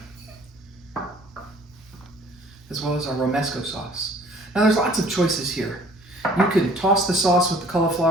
as well as our Romesco sauce. Now there's lots of choices here. You can toss the sauce with the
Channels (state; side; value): normal; both; correlation 0.53